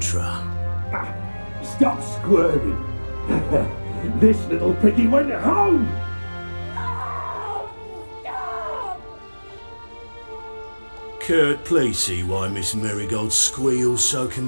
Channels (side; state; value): both; inverted; correlation -1.00